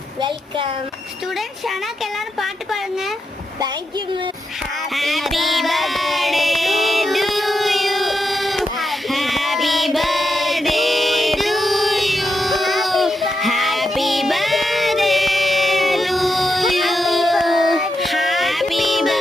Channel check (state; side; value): normal; both; correlation 0.85